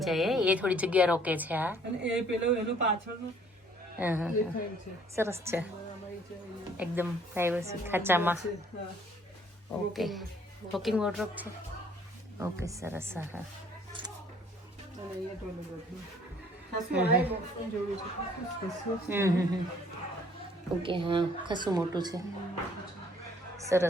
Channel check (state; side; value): normal; both; correlation 0.60